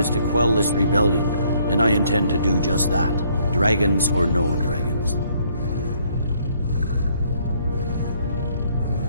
to quell this rebellion, and I intend to do just that. Dragons or no dragons.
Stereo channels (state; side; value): inverted; both; correlation -0.66